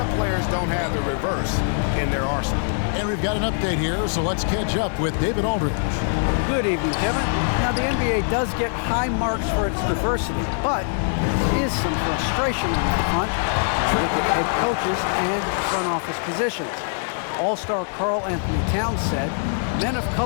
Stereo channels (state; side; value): silent; right; 56 dB below the other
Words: players don't have the reverse in their arsenal. And we've got an update here, so let's catch up with David Aldridge. Good evening, Kevin. Now, the NBA does get high marks for its diversity, but there is some frustration on that front. Look at head coaches and front office positions. All-star Karl Anthony Towns said, men of